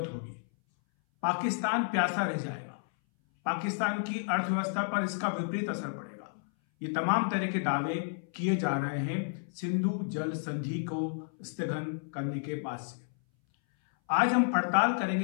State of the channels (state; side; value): silent; right; 57 dB below the other